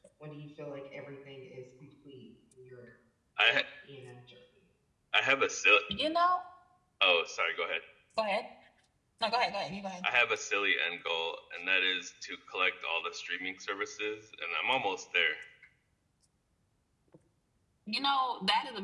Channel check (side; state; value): both; identical; correlation 1.00